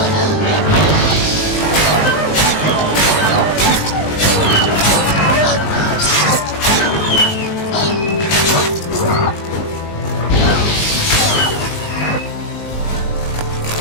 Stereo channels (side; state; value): right; late; 19 ms